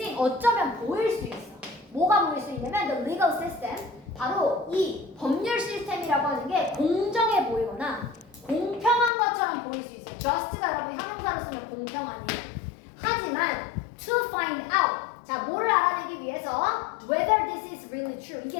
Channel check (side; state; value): right; drops out; at 9.1 s